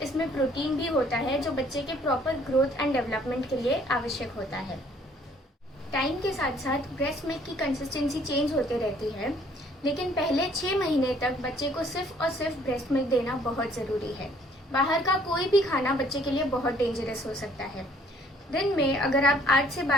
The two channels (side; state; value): both; normal; correlation 0.61